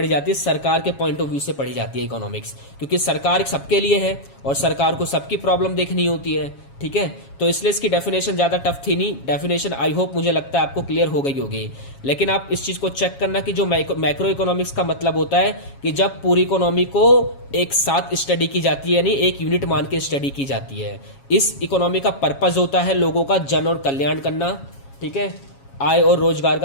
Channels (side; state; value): right; late; 7.3 ms